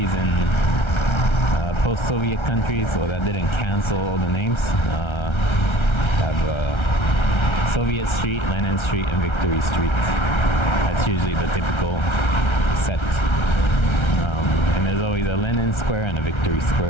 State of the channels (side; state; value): right; late; 1.3 ms